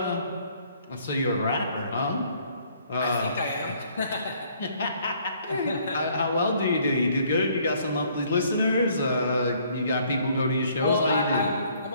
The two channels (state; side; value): inverted; both; correlation -0.63